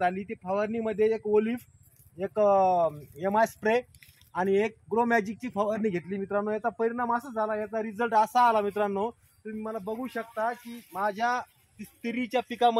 आली. ती फवारणीमध्ये एक ओलिफ, एक MI स्प्रे आणि एक ग्रो मॅजिकची फवारणी घेतली मित्रांनो. याचा परिणाम असा झाला, याचा रिझल्ट असा आला मित्रांनो, तुम्ही मला बघू शकता की माझ्या तिरीच्या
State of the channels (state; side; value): identical; both; correlation 1.00